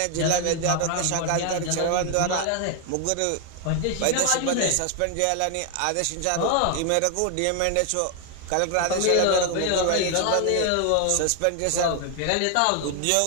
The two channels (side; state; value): both; different; correlation 0.01